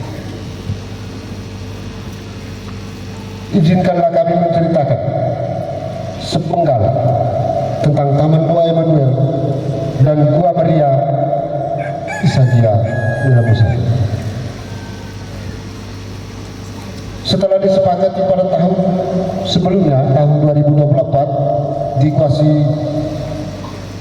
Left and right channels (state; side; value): identical; both; correlation 1.00